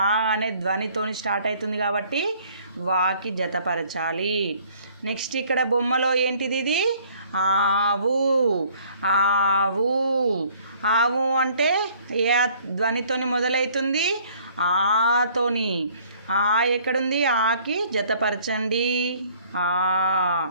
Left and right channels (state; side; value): inverted; both; correlation -0.58